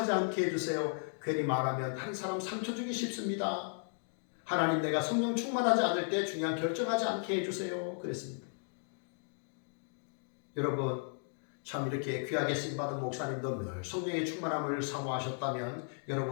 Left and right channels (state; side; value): silent; right; 54 dB below the other